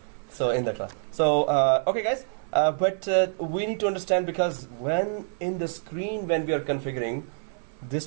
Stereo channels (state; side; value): silent; left; digital silence